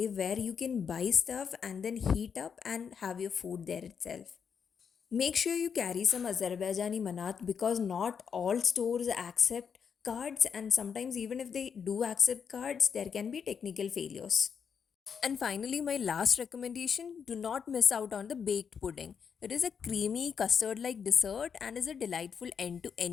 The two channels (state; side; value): quieter; right; 6.8 dB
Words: where you can buy stuff and then heat up and have your food there itself. Make sure you carry some Azerbaijani manat because not all stores accept cards, and sometimes, even if they do accept cards, there can be technical failures. And finally, my last recommendation, do not miss out on the baked pudding. It is a creamy custard like dessert and is a delightful end to